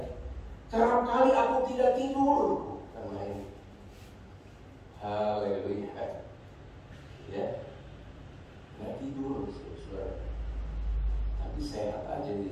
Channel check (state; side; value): identical; both; correlation 1.00